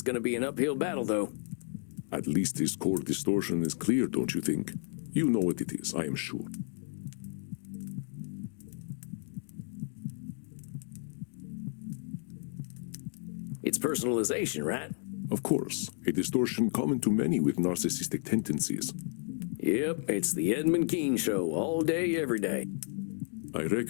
gonna be an uphill battle, though. At least his core distortion is clear, don't you think? You know what it is, I am sure. It's personalization, right? Of course, a distortion common to many with narcissistic tendencies. Yep, it's the Edmund show, all day, every day. I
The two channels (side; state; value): right; silent; 56 dB below the other